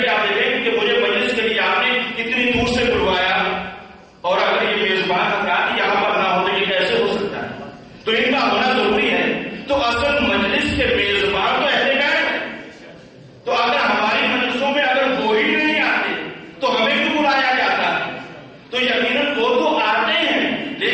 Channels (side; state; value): both; identical; correlation 1.00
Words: کہ آپ دیکھیں کہ مجھے مجلس کے لیے آپ نے اتنی دور سے بلوایا، اور اگر یہ میزبان حضرات یہاں پر نہ ہو تو یہ کیسے ہو سکتا ہے؟ تو ان کا ہونا ضروری ہے. تو اصل مجلس کے میزبان تو اہل بیت ہے. تو اگر ہماری مجلسوں میں اگر وہ ہی نہیں آتے تو ہمیں کیوں بلایا جاتا ہے؟ تو یقیناً وہ تو آتے ہیں،